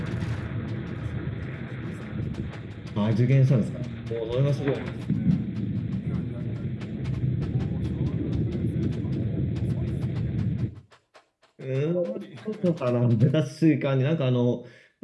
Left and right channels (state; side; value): identical; both; correlation 1.00